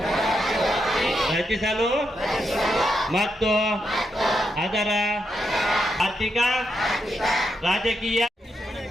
ರಚಿಸಲು ಮತ್ತು ಅದರ ಆರ್ಥಿಕ ರಾಜಕೀಯ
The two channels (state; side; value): normal; both; correlation 0.83